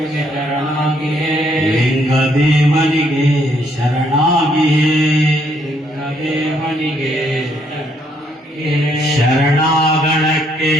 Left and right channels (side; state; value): both; normal; correlation 0.70